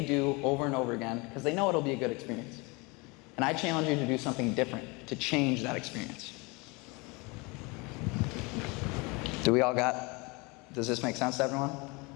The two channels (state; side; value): quieter; right; 27.5 dB